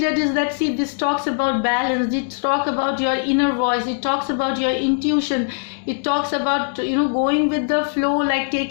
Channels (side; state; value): right; silent; digital silence